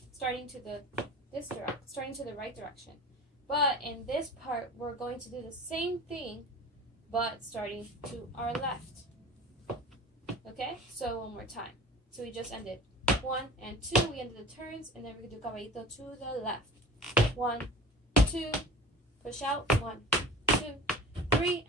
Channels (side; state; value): both; normal; correlation 0.39